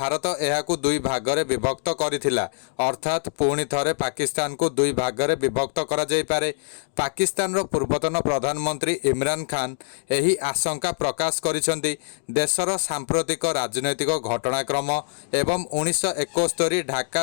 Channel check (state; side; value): silent; right; digital silence